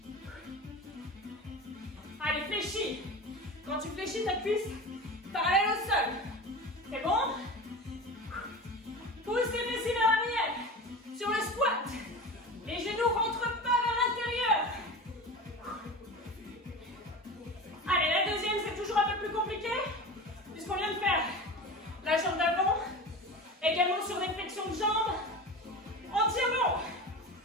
Allez, fléchis. Quand tu fléchis, ta cuisse parallèle au sol. C'est bon? Pousse les fessiers vers l'arrière. Sur le squat, les genoux ne rentrent pas vers l'intérieur. Allez, la deuxième, c'est toujours un peu plus compliqué, puisqu'on vient de faire la jambe d'avant. Également sur des flexions de jambes. On tient bon.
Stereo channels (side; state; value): both; normal; correlation 0.30